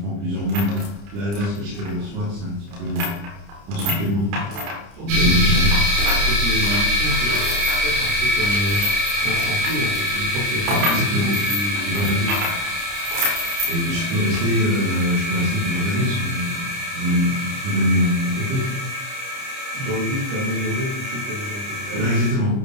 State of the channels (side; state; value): left; late; 30 ms